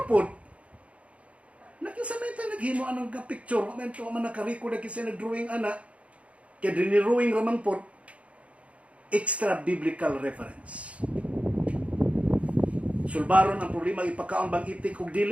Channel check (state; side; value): late; left; 0.064 ms